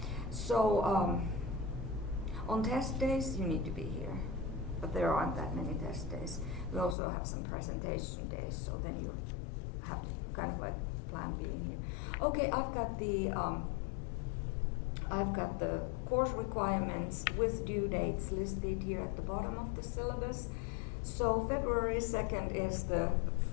So on test days you need to be here, but there aren't that many test days. We also have some presentation days, so then you have to kind of like plan being here. Okay, I've got the course requirements with due dates listed here at the bottom of the syllabus. So February 2nd is the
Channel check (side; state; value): right; drops out; at 7.0 s